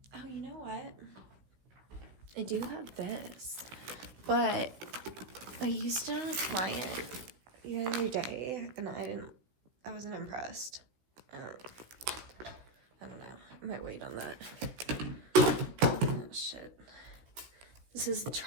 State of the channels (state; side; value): late; left; 16 ms